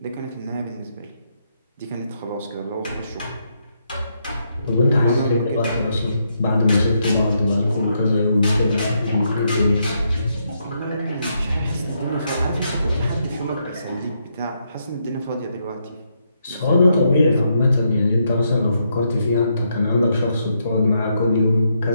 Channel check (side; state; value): both; inverted; correlation -0.79